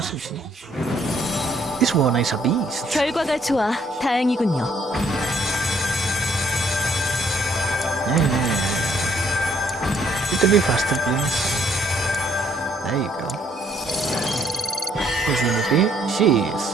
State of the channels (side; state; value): both; normal; correlation 0.67